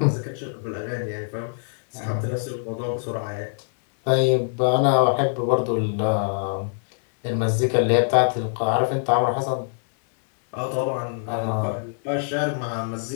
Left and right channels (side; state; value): right; silent; digital silence